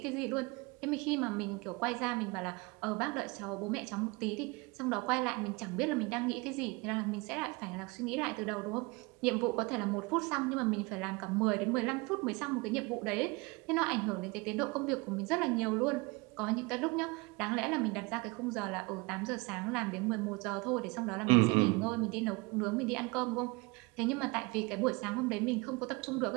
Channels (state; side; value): quieter; left; 26.4 dB